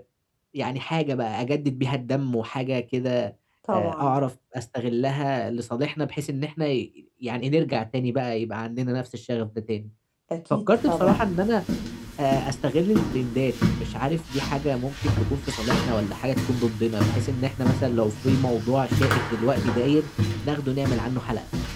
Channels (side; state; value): both; identical; correlation 1.00